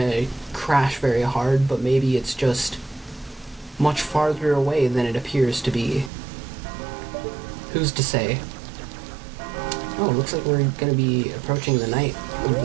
crash very hard, but maybe it's just much farther away than it appears to be. Who's to say? Oh, it looks like we're gonna be approaching the night of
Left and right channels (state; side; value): drops out; left; at 6.1 s